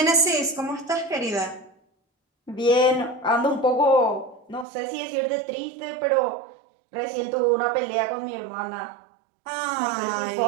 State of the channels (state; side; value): drops out; left; at 4.7 s